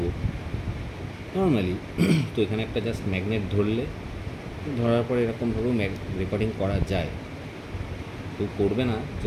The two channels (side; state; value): both; identical; correlation 1.00